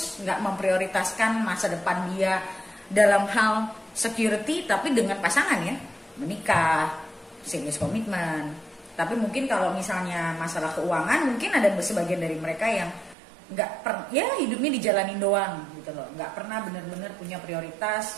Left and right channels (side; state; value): left; drops out; at 13.2 s